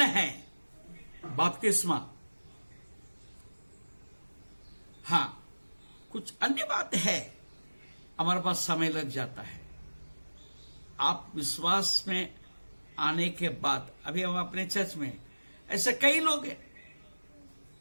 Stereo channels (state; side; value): inverted; both; correlation -1.00